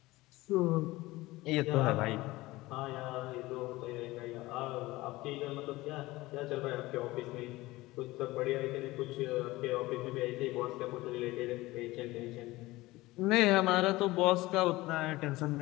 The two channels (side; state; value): right; quieter; 19.3 dB